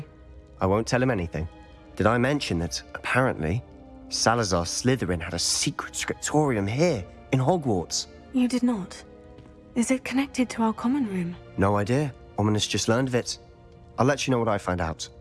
I won't tell him anything. Did I mention that, apparently, Salazar Slytherin had a secret scriptorium here, in Hogwarts? You did not. Is it connected to our common room? No idea. Ominous just learned of it. I'll let you know what I find out.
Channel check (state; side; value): identical; both; correlation 1.00